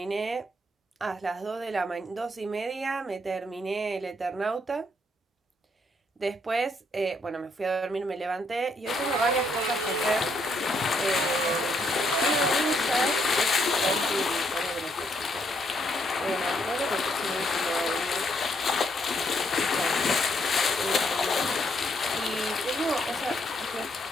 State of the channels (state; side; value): normal; both; correlation 0.73